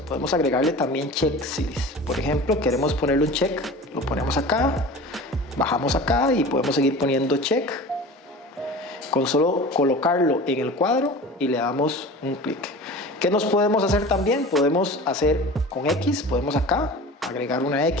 podemos agregarle también checklists. Por ejemplo, queremos ponerle un check, lo ponemos acá, bajamos acá y podemos seguir poniendo check. Con solo colocarlo en el cuadro y le damos un clic. ¿Qué nos podemos hacer también? Podemos hacer con X, podemos acá agregar una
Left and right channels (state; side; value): normal; both; correlation 0.37